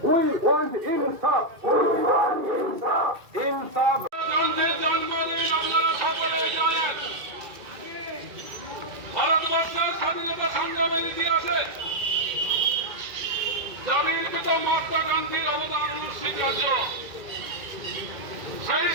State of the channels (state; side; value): late; left; 2.3 ms